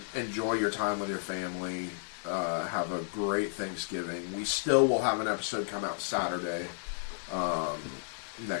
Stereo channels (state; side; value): silent; right; digital silence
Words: Enjoy your time with your family. Have a great Thanksgiving. We still will have an episode come out Saturday